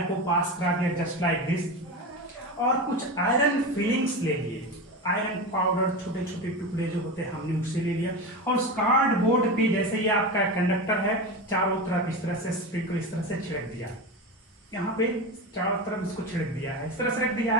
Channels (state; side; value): normal; both; correlation 0.22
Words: को पास करा दिया जस्ट लाइक दिस, और कुछ आयरन फिलिंग्स ले लिए. आयरन पाउडर छोटे छोटे टुकड़े जो होते हैं हमने उससे ले लिया और उस कार्डबोर्ड पे जैसे ये आपका कंडक्टर है चारों तरफ इस तरह से स्प्रिंकल इस तरह से छिड़क दिया. यहाँ पे चारों तरफ इसको छिड़क दिया है, इस तरह से रख दिया